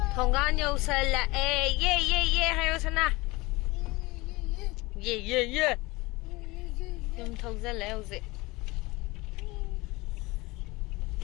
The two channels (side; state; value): right; quieter; 22.6 dB